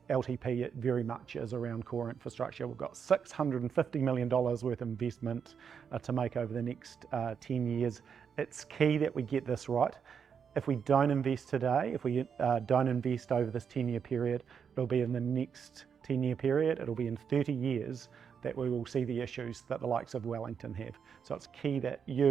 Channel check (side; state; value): left; quieter; 7.0 dB